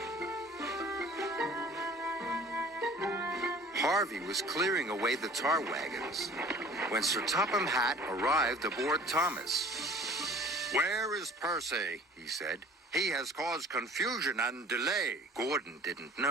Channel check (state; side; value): normal; both; correlation 0.48